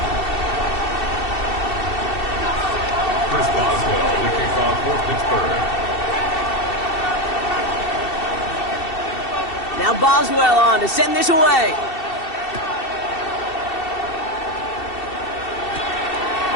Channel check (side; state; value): right; late; 2.7 ms